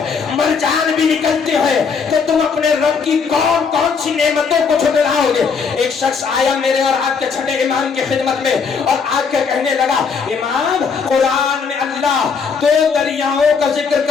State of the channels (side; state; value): right; quieter; 5.6 dB